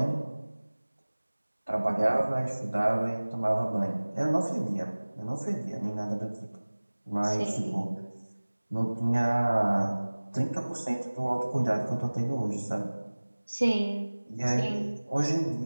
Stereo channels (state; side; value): inverted; both; correlation -1.00